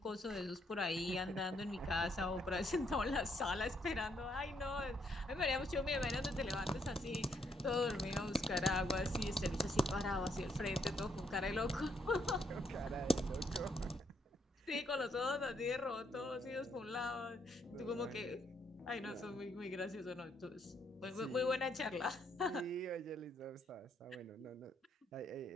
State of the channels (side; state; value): both; normal; correlation 0.73